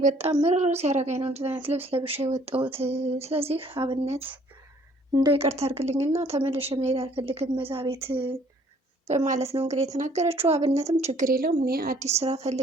በጣም ምርር ሲያደርገኝ ነው እንደዚህ አይነት ልብስ ለብሼ የወጣሁት። ስለዚህ አብነት እንደው ይቅርታ አድርግልኝና ተመልሼ መሄድ አልፈልግም እዛ ቤት በማለት ነው እንግዲህ የተናገረችው። አብነትም ችግር የለውም እኔ አዲስ ስራ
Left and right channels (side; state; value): both; normal; correlation 0.60